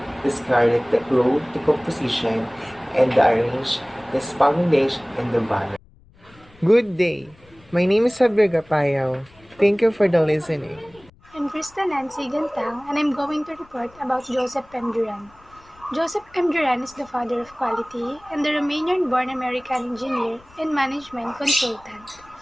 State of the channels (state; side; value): noise; left; rumble, 27 dB below the sound